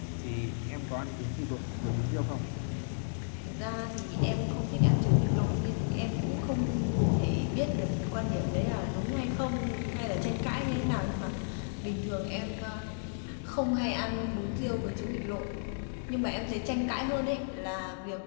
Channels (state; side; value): silent; right; digital silence